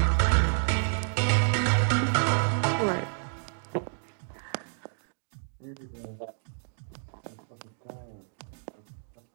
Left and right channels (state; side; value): silent; left; digital silence